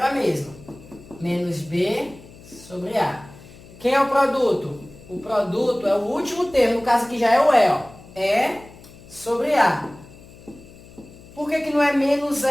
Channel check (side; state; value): left; noise; hum, 21 dB below the sound